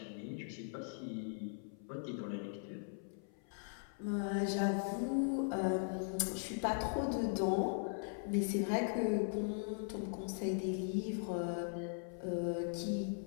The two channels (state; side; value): silent; right; 51 dB below the other